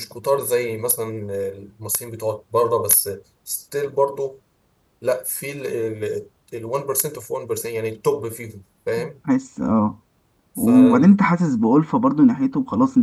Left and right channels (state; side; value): identical; both; correlation 1.00